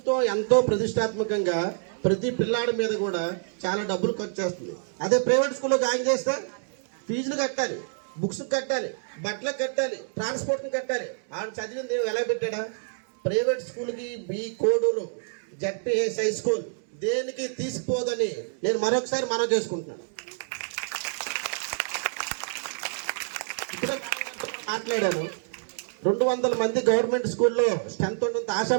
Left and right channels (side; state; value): left; silent; digital silence